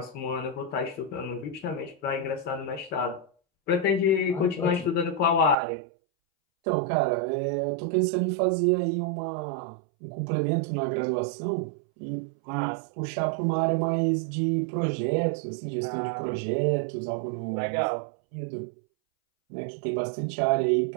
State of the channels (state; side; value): drops out; left; at 5.6 s